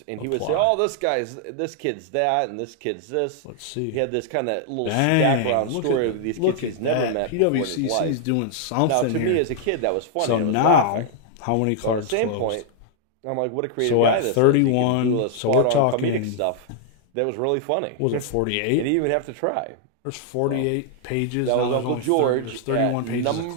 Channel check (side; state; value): both; different; correlation 0.00